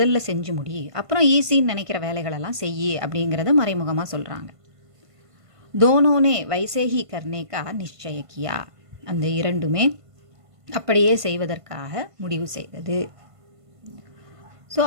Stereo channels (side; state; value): left; late; 1.5 ms